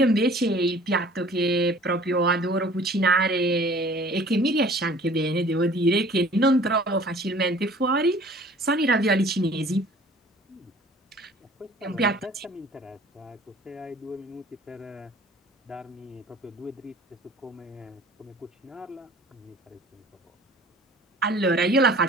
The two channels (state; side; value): normal; both; correlation 0.50